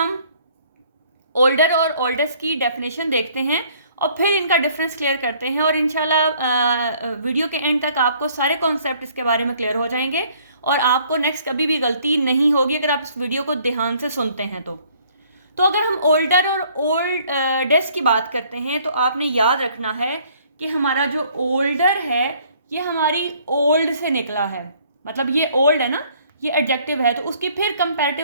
ओल्डर और ओल्डेस्ट की डेफिनेशन देखते हैं और फिर इनका डिफरेंस क्लियर करते हैं और इंशाल्लाह वीडियो के एंड तक आपको सारे कॉन्सेप्ट इसके बारे में क्लियर हो जाएंगे और आपको नेक्स्ट कभी भी गलती नहीं होगी अगर आप इस वीडियो को ध्यान से सुनते हैं तो अगर हम ओल्डर और ओल्डेस्ट की बात करते हैं तो आपने याद रखना है कि हमारा जो ओल्डर है ये हमारी ओल्ड से निकला है, मतलब ये ओल्ड है ना, ये एडजेक्टिव है तो उसकी फिर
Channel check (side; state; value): both; inverted; correlation -0.60